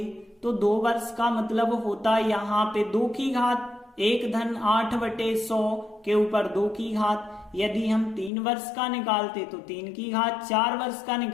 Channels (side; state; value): right; drops out; at 8.3 s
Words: तो 2 वर्ष का मतलब होता यहाँ पे 2 की घात, एक धन 8 बटे 100 के ऊपर 2 की घात। यदि हम 3 वर्ष का निकालते तो 3 की घात, 4 वर्ष का